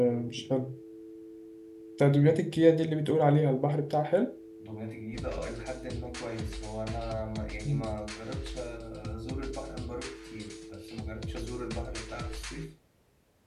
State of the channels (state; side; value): identical; both; correlation 1.00